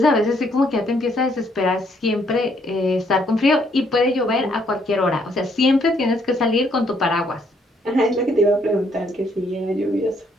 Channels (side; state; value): both; normal; correlation 0.69